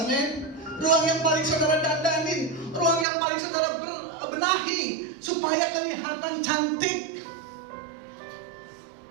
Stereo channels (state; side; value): drops out; left; at 3.1 s